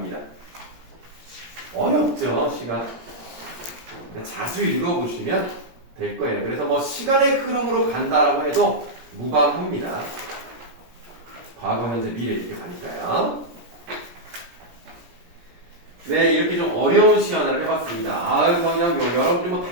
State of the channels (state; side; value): late; left; 17 ms